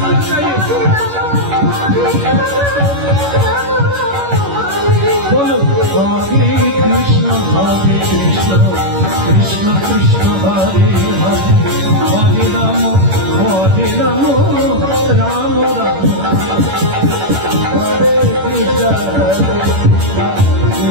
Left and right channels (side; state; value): left; late; 11 ms